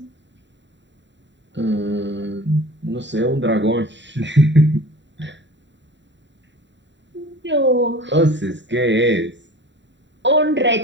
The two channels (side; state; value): left; late; 0.52 ms